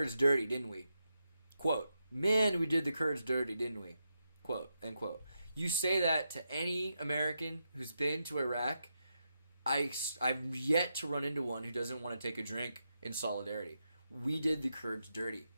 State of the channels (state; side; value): inverted; both; correlation -0.85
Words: dirty, didn't we? Quote, man, we did the Kurds dirty, didn't we? Quote, end quote. You say that to any American who's been to Iraq, I've yet to run into one who doesn't want to take a drink in solidarity. we did the Kurds dirty.